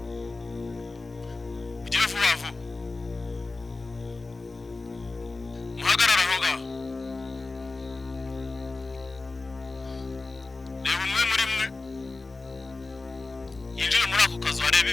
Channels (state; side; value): quieter; right; 3.5 dB